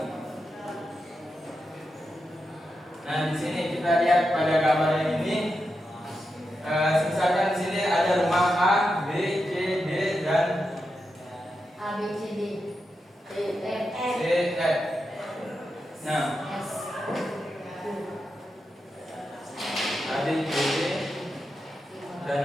nah di sini kita lihat pada gambar yang ini. Misalkan di sini ada rumah A, B, C, D dan A B C D E F C, F. Nah, S A, B, C, D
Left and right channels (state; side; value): normal; both; correlation 0.88